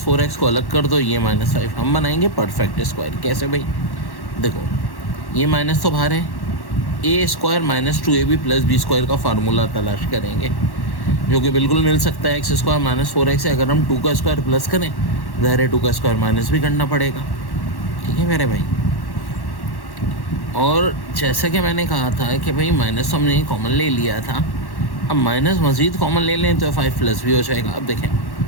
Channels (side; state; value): right; late; 1.1 ms